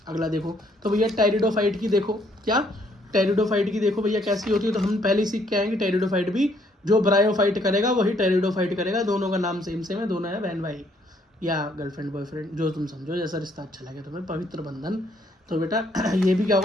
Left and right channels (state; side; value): normal; both; correlation 0.67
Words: अगला देखो तो भैया टेरिडोफाइट की देखो, क्या टेरिडोफाइट की देखो भैया कैसी होती है। तो हम पहले सीख के आएंगे टेरिडोफाइट भी, जो ब्रायोफाइट करेगा वही टेरिडोफाइट करेगा। दोनों का नाम सेम सेम है, दोनों है बहन भाई या गर्लफ्रेंड बॉयफ्रेंड, जो तुम समझो, जैसा रिश्ता अच्छा लगे तुम्हें, पवित्र बंधन। तो बेटा ये भी क्या